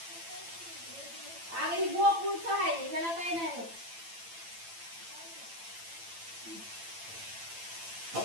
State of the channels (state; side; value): late; left; 8.9 ms